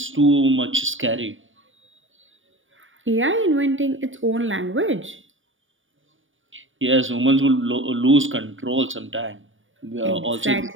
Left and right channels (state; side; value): late; left; 0.57 ms